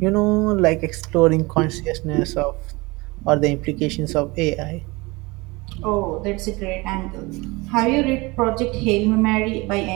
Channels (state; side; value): quieter; left; 24.0 dB